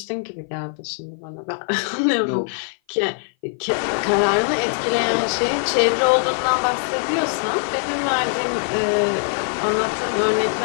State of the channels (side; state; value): right; silent; 56 dB below the other